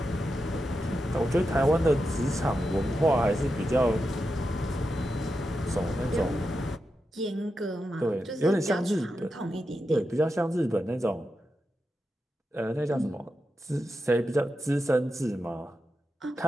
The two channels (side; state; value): both; normal; correlation 0.88